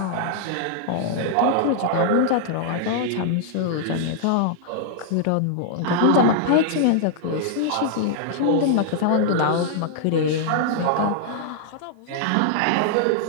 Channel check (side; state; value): both; different; correlation -0.01